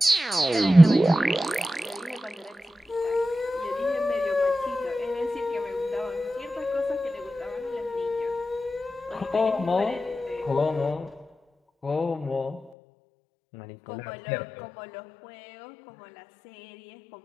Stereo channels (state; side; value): drops out; right; at 12.7 s